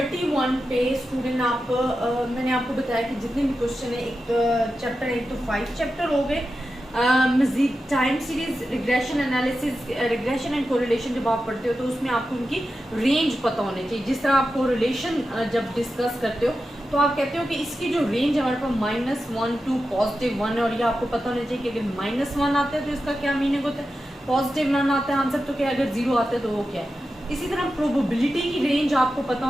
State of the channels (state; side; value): normal; both; correlation 0.91